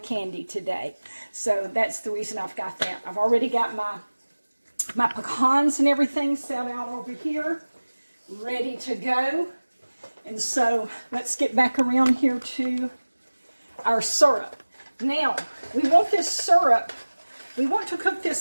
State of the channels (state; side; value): inverted; both; correlation -1.00